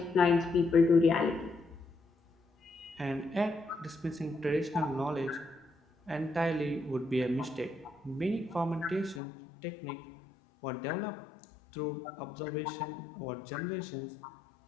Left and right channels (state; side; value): drops out; right; at 9.2 s